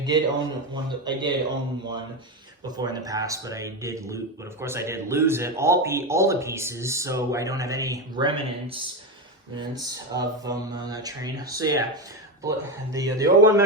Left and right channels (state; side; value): normal; both; correlation 0.14